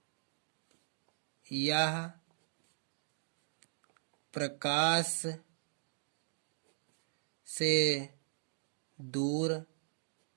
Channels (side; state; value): left; silent; digital silence